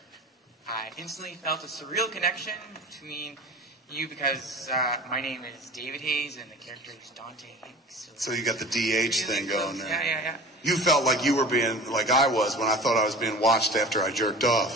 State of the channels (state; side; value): normal; both; correlation 0.38